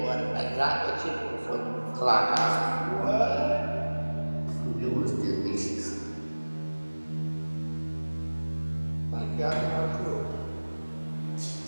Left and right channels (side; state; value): both; inverted; correlation -1.00